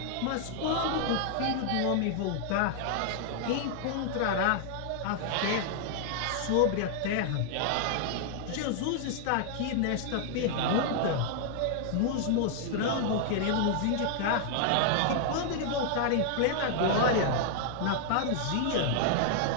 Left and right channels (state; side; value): different; both; correlation -0.01